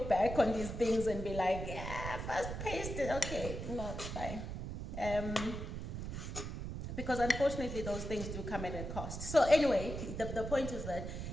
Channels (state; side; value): noise; right; rumble, 6 dB below the sound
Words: back on these things and be like, yeah, fast-paced, okay, no, it's fine. Because unfortunately, those things do come at a cost. So anyway, the point is that